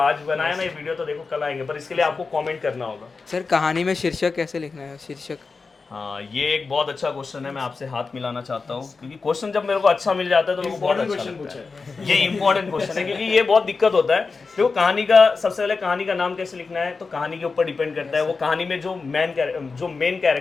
बनाया ना ये वीडियो तो देखो कल आएंगे, पर इसके लिए आपको कमेंट करना होगा। सर कहानी में शीर्षक कैसे लिखना है? शीर्षक हाँ, ये एक बहुत अच्छा क्वेश्चन है, मैं आपसे हाथ मिलाना चाहता हूँ, क्योंकि क्वेश्चन जब मेरे को अच्छा मिल जाता है तो मेरे को बहुत अच्छा लगता है। ये इंपॉर्टेंट क्वेश्चन है, क्योंकि ये बहुत दिक्कत होता है। देखो कहानी का, सबसे पहले कहानी का नाम कैसे लिखना है तो कहानी के ऊपर डिपेंड करता है। वो कहानी में जो मेन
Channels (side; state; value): right; quieter; 4.4 dB